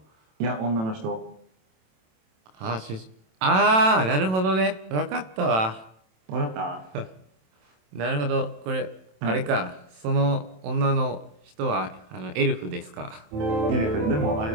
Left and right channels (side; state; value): left; late; 27 ms